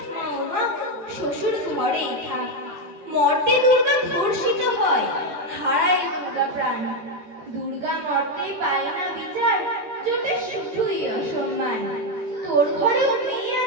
না ও মা, শ্বশুর ঘরেই থাক। মর্তে দুর্গা ধর্ষিত হয়, হারায় দুর্গা প্রাণ। দুর্গা মর্তে পায় না বিচার, জোটে শুধুই অসম্মান। তোর ঘরেও মেয়ে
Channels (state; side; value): late; left; 14 ms